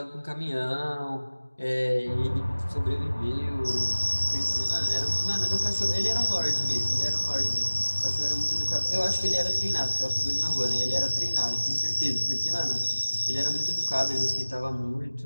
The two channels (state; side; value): inverted; both; correlation -1.00